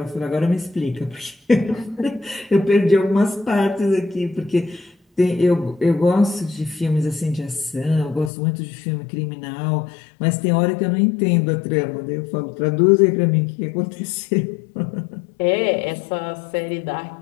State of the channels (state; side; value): drops out; right; at 8.3 s